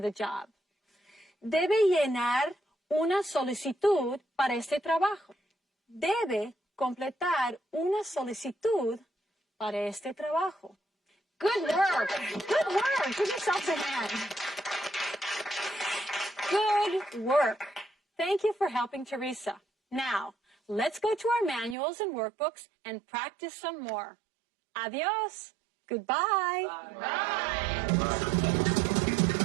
job. Debe llenar una solicitud para este trabajo. Debe completar una solicitud para este trabajo. Good work. Good work. Give yourselves a hand. Good work. Thank you for helping Teresa. Now, let's go to our manuals and workbooks and practice some more. Adios. Goodbye. Bye.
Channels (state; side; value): drops out; left; at 21.8 s